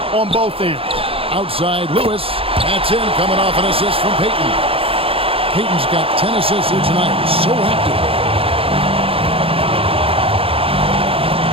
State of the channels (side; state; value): left; late; 0.27 ms